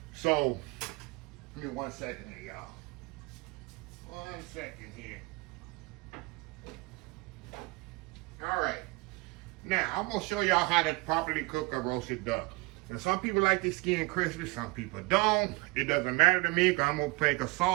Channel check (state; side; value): quieter; left; 24.8 dB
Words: So, give me 1 second here, y'all. 1 second here. All right. Now, I'm going to show y'all how to properly cook a roasted duck. And some people like the skin crispy, some people don't. It doesn't matter to me because I'm going to make a